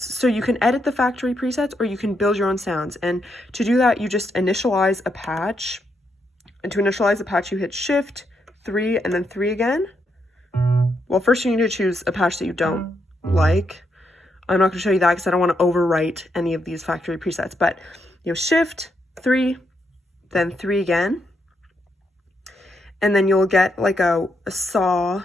So you can edit the factory presets or you can build your own sounds. And to do that, you just initialize a patch. And to initialize a patch, you hit Shift 3 and then 3 again. Well, first you need to choose a patch that you don't like. I'm not going to show you that because I don't want to overwrite any of these factory presets, but Shift 3, then 3 again. And then you'll get like a saw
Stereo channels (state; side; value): normal; both; correlation 0.80